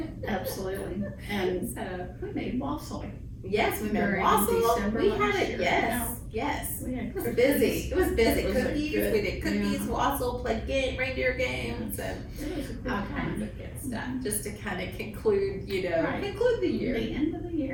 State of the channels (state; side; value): identical; both; correlation 1.00